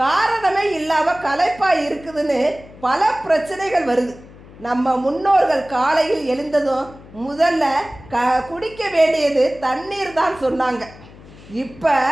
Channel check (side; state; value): left; noise; hum, 20 dB below the sound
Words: காரணமே இல்லாமல் களைப்பாக இருக்குதுன்னு பல பிரச்சனைகள் வருது. நம்ம முன்னோர்கள் காலையில் எழுந்ததும் முதல்ல குடிக்க வேண்டியது தண்ணீர் தான் சொன்னாங்க. இப்போ